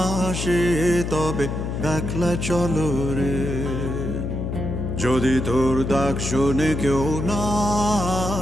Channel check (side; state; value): left; noise; hum, 3 dB below the sound